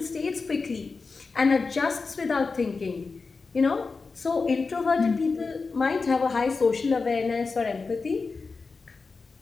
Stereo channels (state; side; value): quieter; right; 4.4 dB